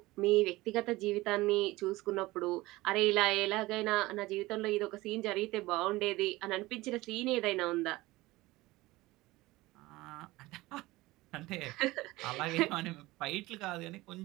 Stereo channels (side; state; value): left; quieter; 19.5 dB